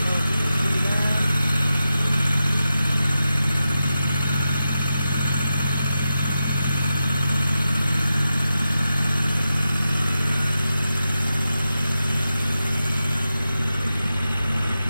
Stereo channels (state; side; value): inverted; both; correlation -0.90